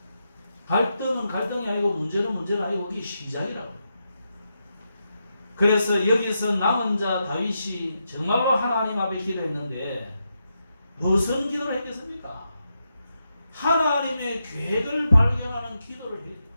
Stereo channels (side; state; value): both; inverted; correlation -0.85